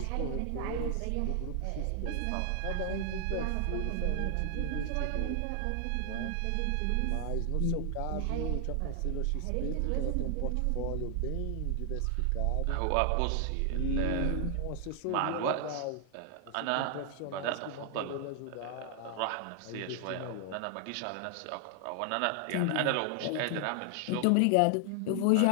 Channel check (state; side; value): different; both; correlation 0.00